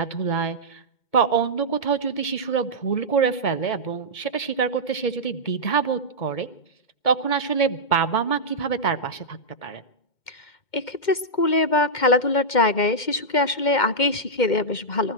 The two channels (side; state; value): right; late; 2.1 ms